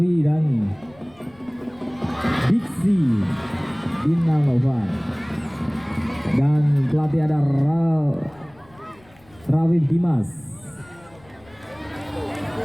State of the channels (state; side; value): noise; left; rumble, 28 dB below the sound